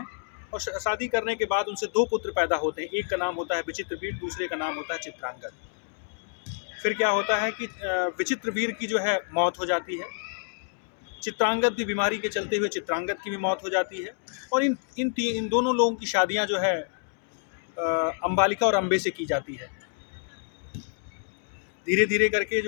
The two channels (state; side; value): silent; right; digital silence